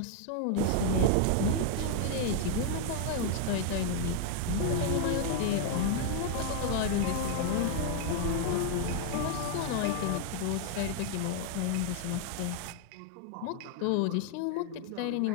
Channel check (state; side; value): different; both; correlation 0.00